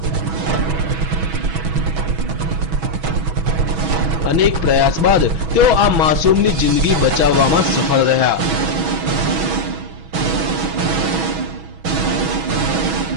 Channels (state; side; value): late; left; 6.2 ms